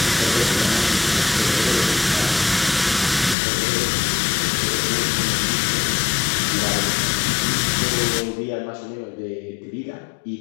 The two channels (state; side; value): drops out; right; at 3.4 s